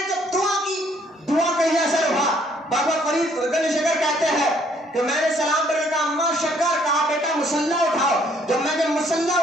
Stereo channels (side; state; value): both; normal; correlation 0.64